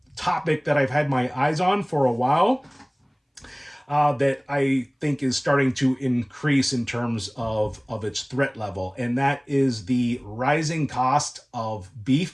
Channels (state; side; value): identical; both; correlation 1.00